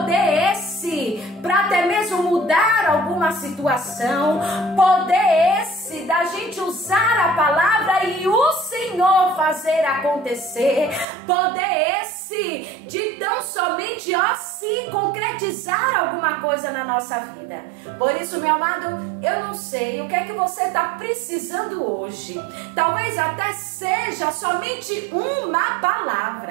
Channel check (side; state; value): left; drops out; at 11.1 s